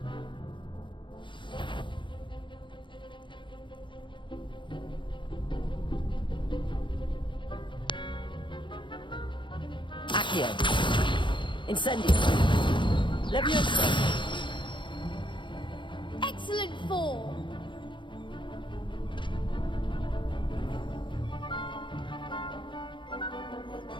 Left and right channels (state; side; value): late; right; 0.23 ms